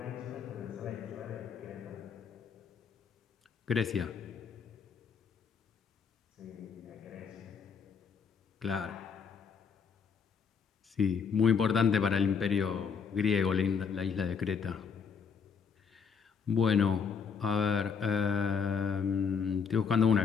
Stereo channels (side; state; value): right; quieter; 6.4 dB